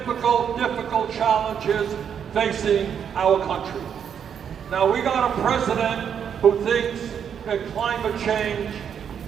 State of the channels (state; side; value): quieter; left; 8.0 dB